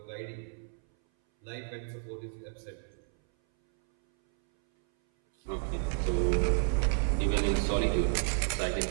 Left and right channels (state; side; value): silent; left; 57 dB below the other